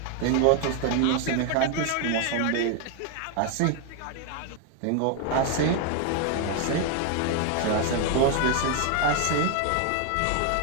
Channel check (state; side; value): different; both; correlation 0.00